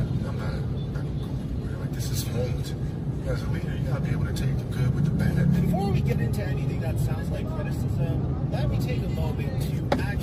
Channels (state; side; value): identical; both; correlation 1.00